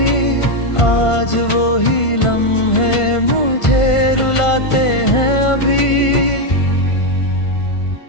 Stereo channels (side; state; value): right; late; 1.5 ms